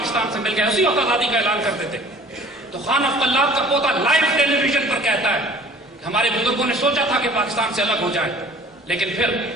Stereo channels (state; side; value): normal; both; correlation 0.49